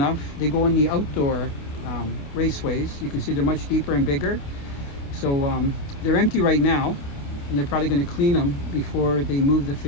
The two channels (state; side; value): late; right; 28 ms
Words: they go in the outdoor raceways. You can see they're much deeper and bigger. So they're empty right now, and they're probably going to clean them before they move the